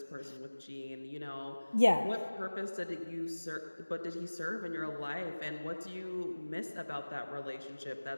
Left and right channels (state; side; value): inverted; both; correlation -1.00